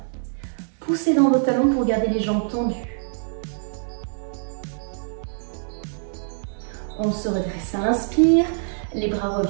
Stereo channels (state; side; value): silent; left; 61 dB below the other